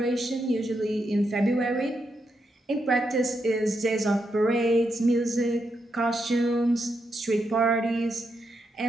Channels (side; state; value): both; normal; correlation 0.82